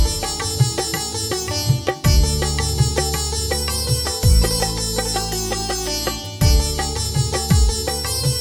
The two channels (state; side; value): identical; both; correlation 1.00